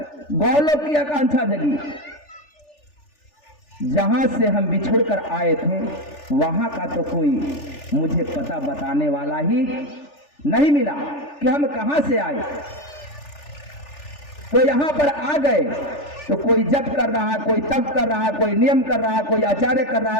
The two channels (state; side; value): late; right; 3.4 ms